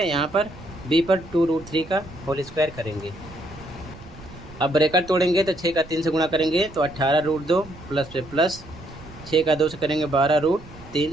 यहाँ पर b पर 2√3 का होल स्क्वायर करेंगे। अब ब्रैकेट तोड़ेंगे तो 6 का 3 से गुणा करेंगे तो 18√2 प्लस पे प्लस, 6 का 2 से करेंगे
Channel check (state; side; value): noise; right; rumble, 18 dB below the sound